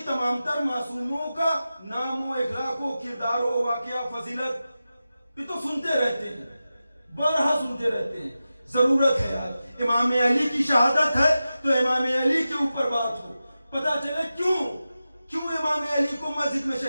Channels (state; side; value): inverted; both; correlation -0.93